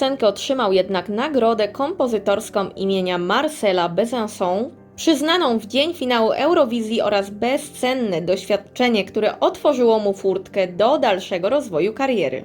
otrzymał jednak nagrodę kompozytorską imienia Marcela Besançon, przyznaną w dzień finału Eurowizji, oraz bezcenne doświadczenie, które otworzyło mu furtkę do dalszego rozwoju kariery.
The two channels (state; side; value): identical; both; correlation 1.00